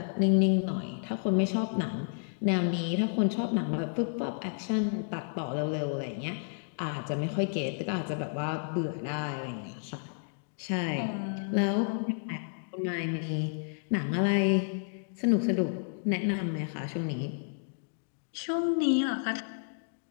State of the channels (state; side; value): silent; right; digital silence